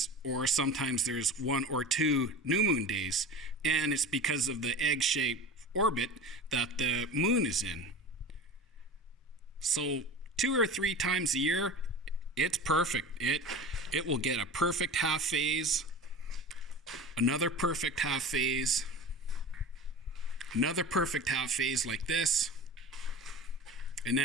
or sometimes there's 1 or 2 new moon days. And it's because of the egg-shaped orbit that the moon is in. So 2 or 3 times a year, it's perfect. It will get a perfect half phase, another perfect half phase, another perfect half phase like this, and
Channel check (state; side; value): normal; both; correlation 0.33